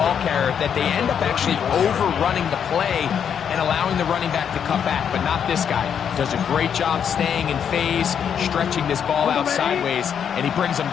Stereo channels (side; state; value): right; quieter; 8.0 dB